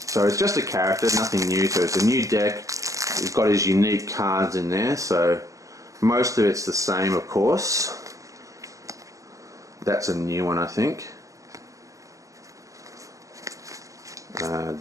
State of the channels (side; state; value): left; late; 0.16 ms